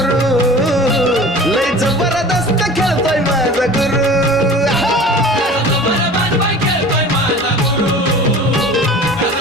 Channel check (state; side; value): normal; both; correlation 0.40